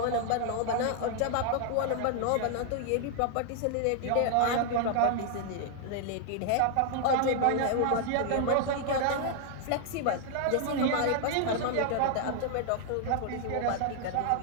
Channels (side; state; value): both; different; correlation 0.00